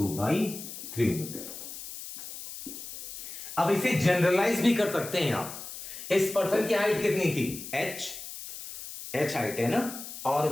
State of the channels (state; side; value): noise; left; hiss, 11 dB below the sound